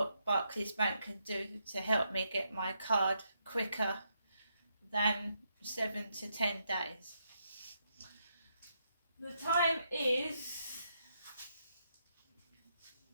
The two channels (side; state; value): both; inverted; correlation -0.79